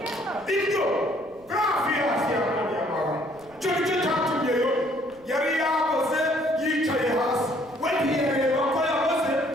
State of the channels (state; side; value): noise; right; rumble, 27 dB below the sound